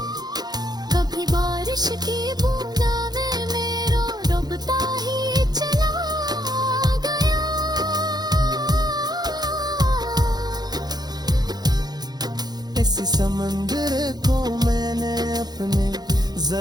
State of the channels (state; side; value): late; left; 0.19 ms